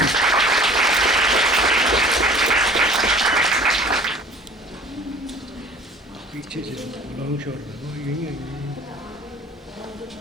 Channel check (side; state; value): both; normal; correlation 0.47